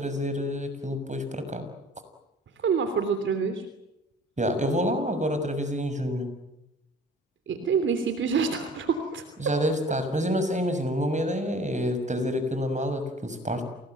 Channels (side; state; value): both; normal; correlation 0.47